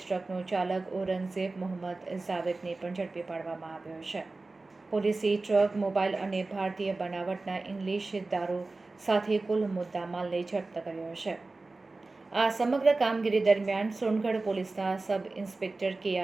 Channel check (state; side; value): quieter; left; 3.4 dB